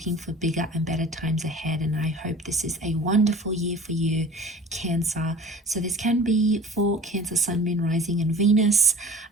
for bigger and better times ahead, and I hope this is a wonderful year for you, Cancer. So this can be for Cancer, Sun, Moon, Rising and Venus.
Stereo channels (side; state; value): both; normal; correlation 0.42